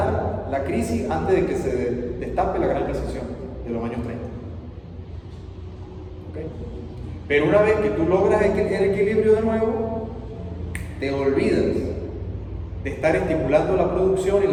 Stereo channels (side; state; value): both; identical; correlation 1.00